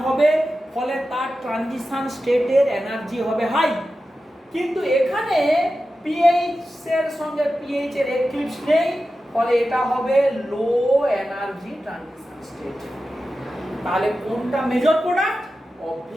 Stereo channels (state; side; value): normal; both; correlation 0.92